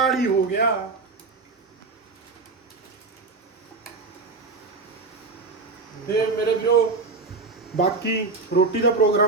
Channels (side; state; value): left; quieter; 3.8 dB